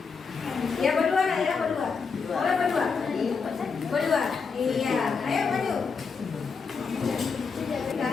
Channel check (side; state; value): right; quieter; 5.3 dB